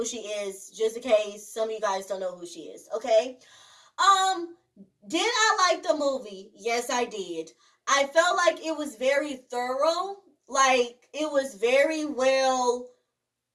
she is, just in case some of you guys don't know who she is, okay? Um, did I like the movie? Yes, I did. I felt like it was very thorough. Like, it was very well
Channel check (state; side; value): identical; both; correlation 1.00